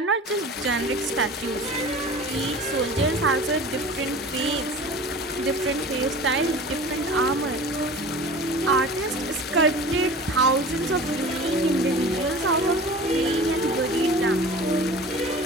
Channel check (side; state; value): both; normal; correlation 0.39